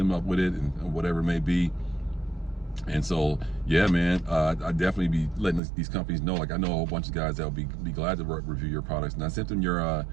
up with it and whatever it may be. And so, yeah, man, I definitely be letting these companies know. Like, I know a whole bunch of guys that will be glad to review your products, and I sent them your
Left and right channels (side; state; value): left; drops out; at 5.6 s